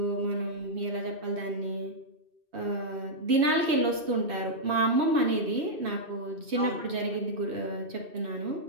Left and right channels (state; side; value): late; left; 2.6 ms